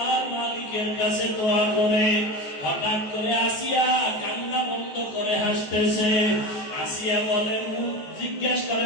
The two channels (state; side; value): late; right; 14 ms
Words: মালিকের কাছে দোয়া করে। হঠাৎ করে আসিয়া কান্না বন্ধ করে হাসতেছে। আসিয়া বলে, জিজ্ঞেস করে